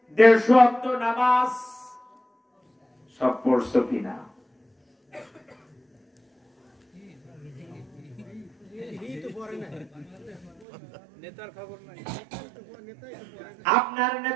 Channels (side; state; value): left; drops out; at 10.7 s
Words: 150 ওয়াক্ত নামাজ সব পড়ছো কিনা? আপনার